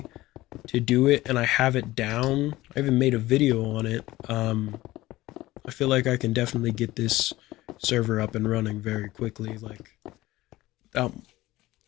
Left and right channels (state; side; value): quieter; right; 17.5 dB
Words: to do it and I have it down, I even made a video on it. I feel like I can definitely get this server up and running very quickly, like without